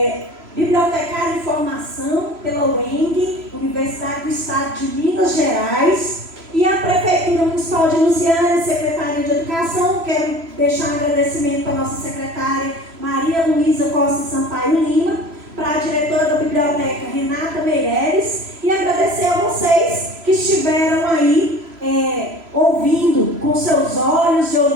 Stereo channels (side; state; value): left; late; 3.0 ms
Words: bibliotecária em formação pela UENG, Universidade do Estado de Minas Gerais, e a Prefeitura Municipal de Lusiânia, Secretaria de Educação. Quero deixar um agradecimento para a nossa secretária Maria Luísa Costa Sampaio Lima, para a diretora da biblioteca Renata Meireles, e agradecer a vocês que estiveram aí ouvindo com seus olhos e